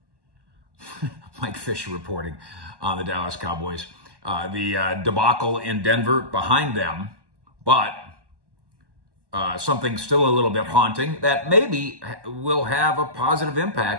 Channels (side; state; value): left; late; 1.1 ms